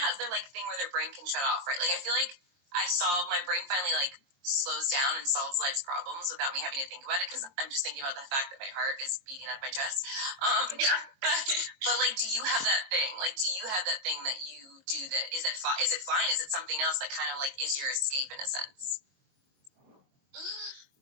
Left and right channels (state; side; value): late; left; 22 ms